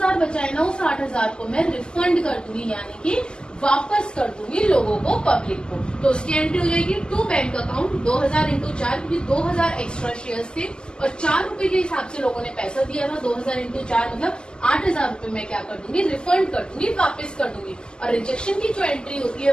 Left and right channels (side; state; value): right; late; 0.047 ms